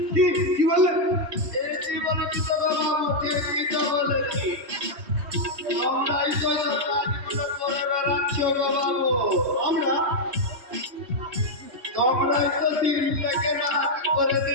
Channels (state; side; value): late; left; 3.1 ms